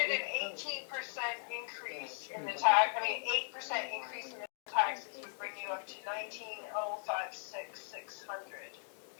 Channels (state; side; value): silent; right; digital silence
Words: an 18% increase in the tax, 8% increase in the taxes would bring you up to 19,056,600.